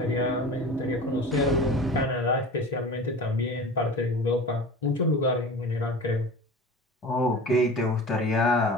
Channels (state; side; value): normal; both; correlation 0.36